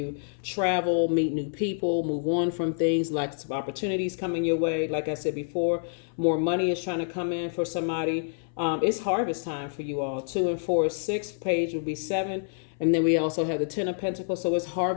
travel, meet new people, move on from things. Lots of opportunities coming your way. Like I said before, more money is trying to come in for somebody. It's harvest time for you all. 2 and 4 is 6. Page would be 7. And then we also have the 10 of Pentacles. So it's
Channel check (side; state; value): right; silent; 58 dB below the other